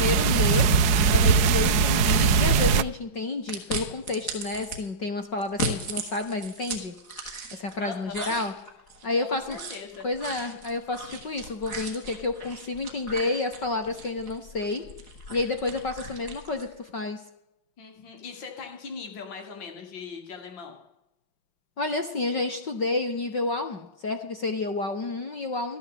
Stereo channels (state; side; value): late; right; 4.8 ms